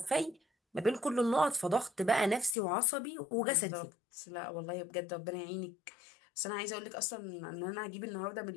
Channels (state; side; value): drops out; right; at 2.6 s